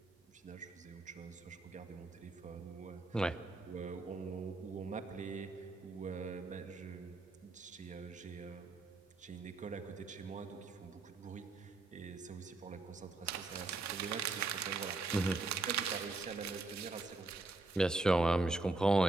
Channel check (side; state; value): left; quieter; 3.2 dB